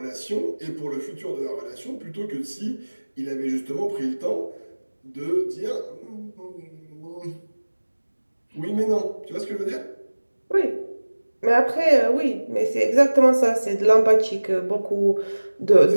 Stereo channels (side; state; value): both; inverted; correlation -1.00